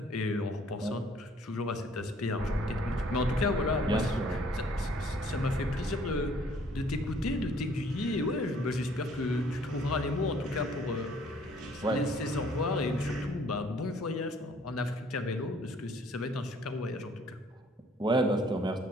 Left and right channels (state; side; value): normal; both; correlation 0.59